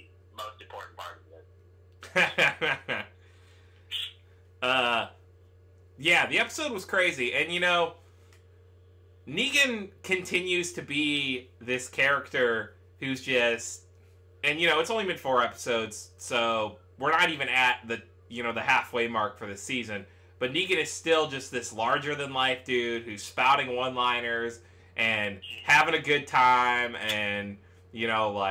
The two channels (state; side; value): identical; both; correlation 1.00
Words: most important part of this." Yeah, the episode was crazy, and you know, Negan continues to be this character who's just, and you know, it's only been 4 episodes, so we're not even at the halfway mark for the season, but Negan is still just this larger than life dude who's spouting one-liners and having a good time, and you know,